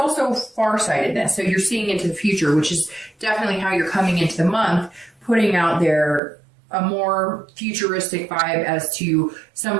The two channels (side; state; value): left; drops out; at 6.2 s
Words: farsightedness. So you're seeing into the future, which is definitely how you're coming into the month, putting out there a more futuristic vibe as to